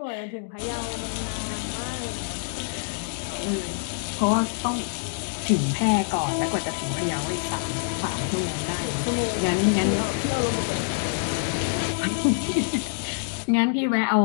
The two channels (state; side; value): silent; right; digital silence